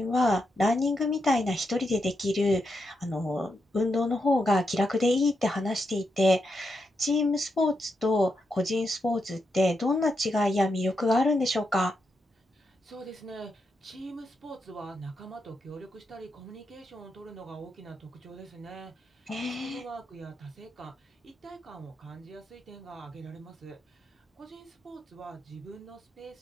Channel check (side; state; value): both; normal; correlation 0.84